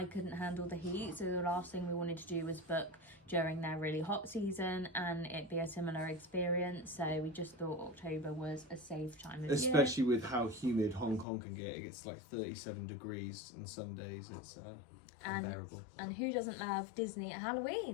couldn't handle the heat, so the last thing we wanted to do was book during their really hot season and it be a similar experience. So we just thought October was a safe time of especially year. with how humid Hong Kong can get. It gets like 37 degrees on some days. It's unbearable. And who doesn't love Disney at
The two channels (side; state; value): right; drops out; at 11.2 s